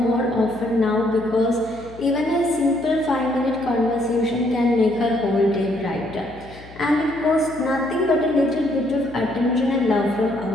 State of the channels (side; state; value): left; noise; hum, 19 dB below the sound